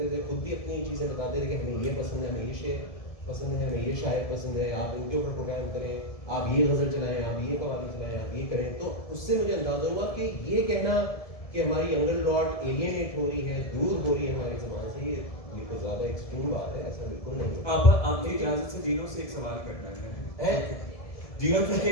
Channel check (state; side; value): late; right; 1.7 ms